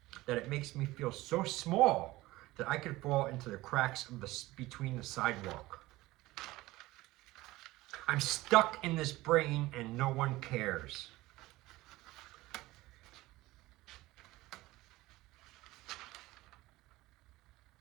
that it makes me feel so small that I could fall into the cracks of between the sidewalk. I'm stuck in this brain and no one cares.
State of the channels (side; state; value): left; quieter; 18.7 dB